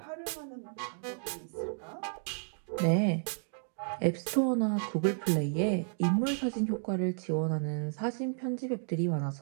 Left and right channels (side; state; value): left; silent; digital silence